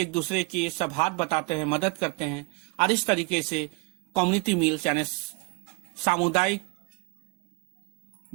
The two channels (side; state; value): left; quieter; 30.1 dB